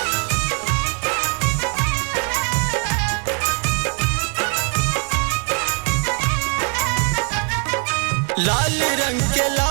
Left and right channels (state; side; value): quieter; left; 39.3 dB